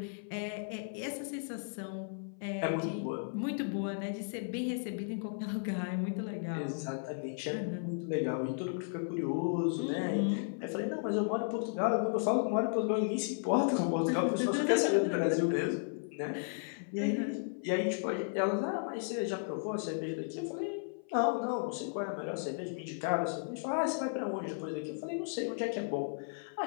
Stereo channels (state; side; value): silent; right; 55 dB below the other